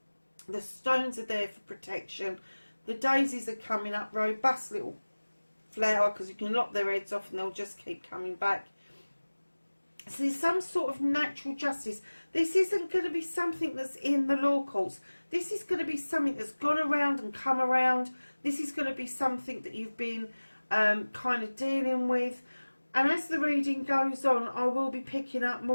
The stones are there for protection. The daisies are coming up, robust little flower, because you can lock their heads off and they'll just keep coming back. So there's some sort of natural justice. This isn't going to be something that's in the law courts. This is going to be something that's gone around and come around. This is going to be something that you've been kind of dealing with. And as the reading goes on, I will be picking up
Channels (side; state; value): both; inverted; correlation -1.00